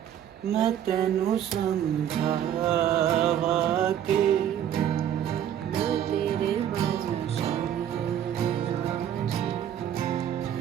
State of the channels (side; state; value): left; quieter; 10.2 dB